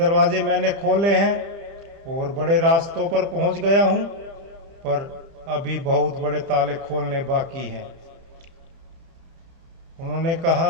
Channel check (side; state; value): left; late; 30 ms